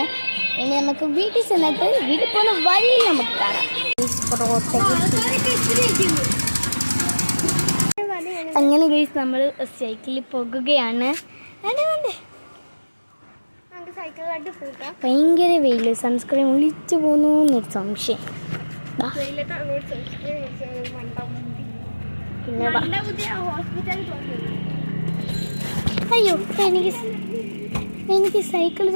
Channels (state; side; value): inverted; both; correlation -1.00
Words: ഇനി നമുക്ക് വീട്ടിൽ ചെന്നിട്ട് വീട്ടിൽ പോകുന്ന വഴിയിൽ നമുക്ക് കാണാം. അങ്ങനെ ഗൈസ് നമ്മൾ സൈക്കിളിൽ പോകുകയാണ്. ഭയങ്കര വെയിൽ, സൺസ്ക്രീൻ ഒളിച്ചു പോകുന്നു എന്നൊരു സംശയം. പിന്നെ അയ്യോ, എനിക്ക് സൈക്കിൾ